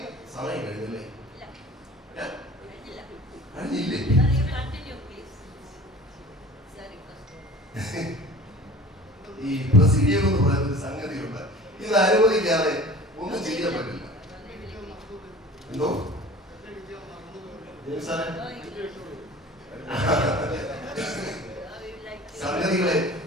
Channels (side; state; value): both; normal; correlation 0.42